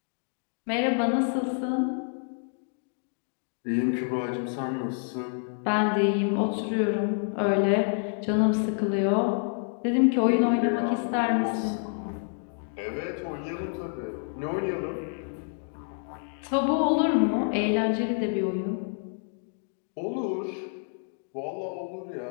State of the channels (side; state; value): right; silent; 59 dB below the other